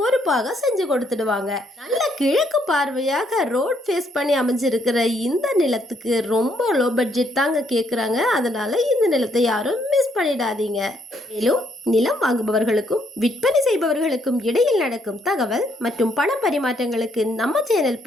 செஞ்சு கொடுத்துடுவாங்க. நல்ல கிழக்கு பார்வையாக ரோட் ஃபேஸ் பண்ணி அமைஞ்சிருக்கிற இந்த நிலத்துக்கு ரொம்ப லோ பட்ஜெட் தாங்க கேட்குறாங்க. அதனால இந்த நிலத்தை யாரும் மிஸ் பண்ணிடாதீங்க. மேலும் நிலம் வாங்குபவர்களுக்கும் விற்பனை செய்பவர்களுக்கும் இடையில் நடக்கும் தகவல் மற்றும் பண பரிமாற்றங்களுக்கு நம்ம சேனல்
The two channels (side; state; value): both; normal; correlation 0.71